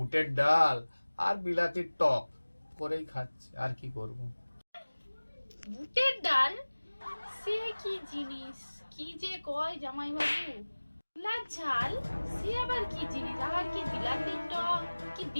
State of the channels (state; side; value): inverted; both; correlation -1.00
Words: ডাল আর বিলাতির টক করেই খাচ্ছে, আর কি করব। বুটের ডাল? সে কি জিনিস, কি যে কয় জামাই বাবু! ছোলার ঝাল, সে আবার কি জিনিস? আবার কি বিলাতির টক? কি